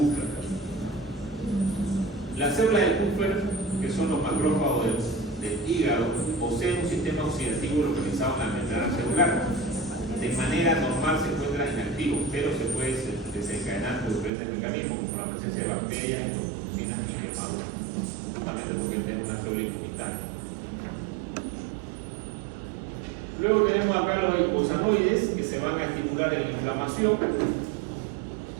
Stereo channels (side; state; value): left; drops out; at 14.3 s